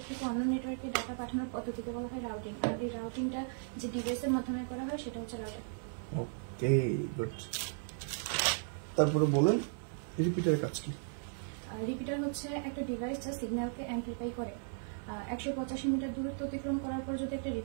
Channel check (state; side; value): silent; left; 54 dB below the other